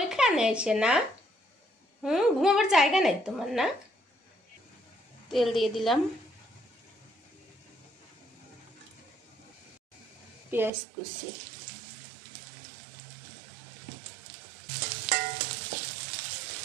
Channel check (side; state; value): left; drops out; at 10.7 s